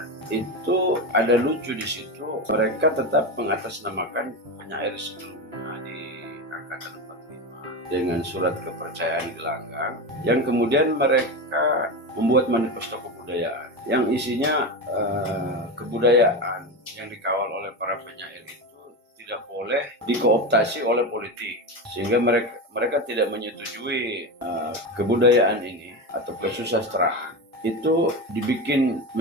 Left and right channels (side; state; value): both; normal; correlation 0.19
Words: itu ada lucu di situ. Mereka tetap mengatasnamakan penyair sebelumnya di angkatan 45 dengan surat kepercayaan gelanggang, yang kemudian mereka membuat manifesto kebudayaan yang isinya kebudayaan yang dikawal oleh para penyair itu tidak boleh dikooptasi oleh politik, sehingga mereka tidak menyetujui kebudayaan ini atau kesusastraan itu dibikin